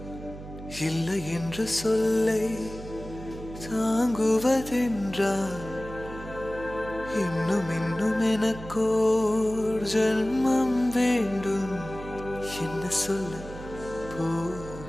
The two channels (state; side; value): noise; right; hum, 13 dB below the sound